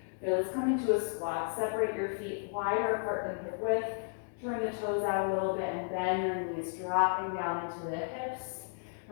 Okay, let's come into a squat. Separate your feet wider apart than hip width. Turn the toes out a little bit and bend your knees, dropping down into the hips.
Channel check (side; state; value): right; silent; digital silence